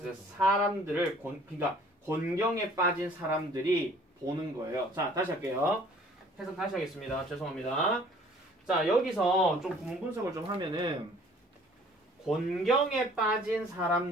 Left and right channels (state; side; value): normal; both; correlation 0.54